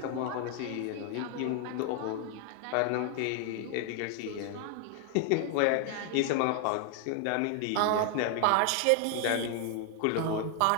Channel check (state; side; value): different; both; correlation 0.00